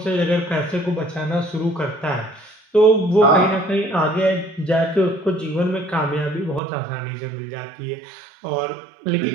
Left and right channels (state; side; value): drops out; left; at 6.6 s